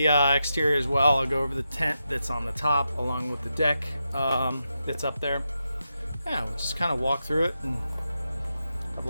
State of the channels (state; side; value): inverted; both; correlation -0.87